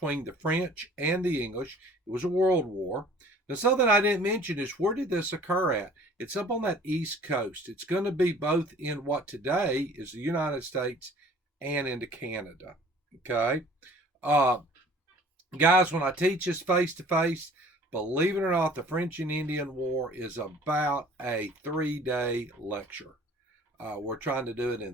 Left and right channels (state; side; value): normal; both; correlation 0.50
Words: the French and the English. It was a world war. Now, something I didn't mention is where did this occur at? It's up on that East Coast. It's going to be both in what today is the United States and into Canada. Okay? Uh, Guys, when I teach this face to face, believe it or not, the French and Indian War is about a 3-day lecture. We're trying to do it in